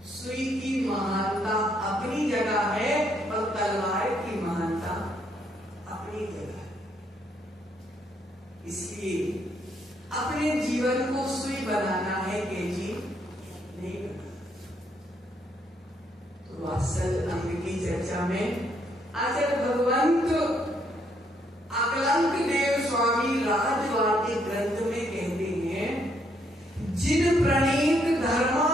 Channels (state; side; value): normal; both; correlation 0.72